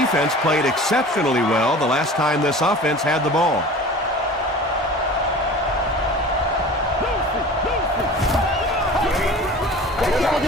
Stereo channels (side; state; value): both; normal; correlation 0.40